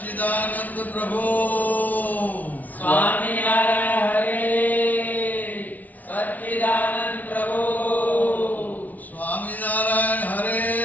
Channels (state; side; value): late; right; 0.076 ms